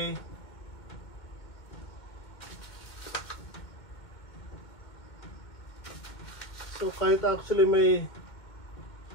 So kahit actually may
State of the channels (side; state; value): right; late; 2.2 ms